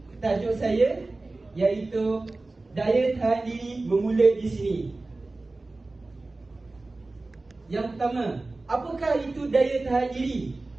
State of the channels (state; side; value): quieter; left; 3.2 dB